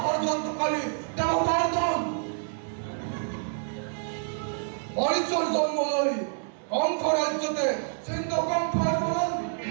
ষড়যন্ত্রকারী দেবতার দল মরিচর জন্ম লই কণ্ঠ রাজ্যতে সিন্ধ কণ্ঠের বলন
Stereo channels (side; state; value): left; silent; digital silence